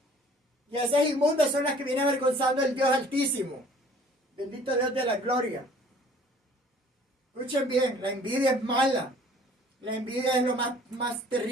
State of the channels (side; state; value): both; normal; correlation 0.53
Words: Y esas inmundas son las que vienen avergonzando el Dios Altísimo. Bendito Dios de la gloria. Escuchen bien, la envidia es mala. La envidia es lo más